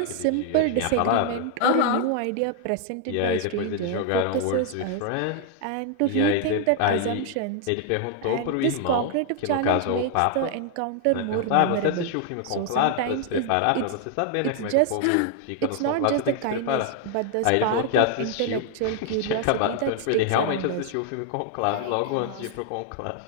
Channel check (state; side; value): different; both; correlation 0.00